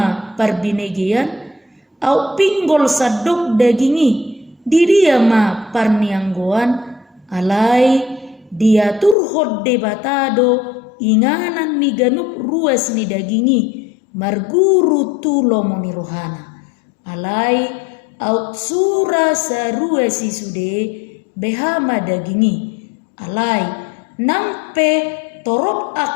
parbinegian au pinggol sadok dagingi di dia ma parnianggoan alai dia turhod debatado inganan ni ganup ruas ni dagingi marguru tulo moni rohana alai aut sura sarua si sude behama dagingi alai nampe torop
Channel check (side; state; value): right; drops out; at 9.2 s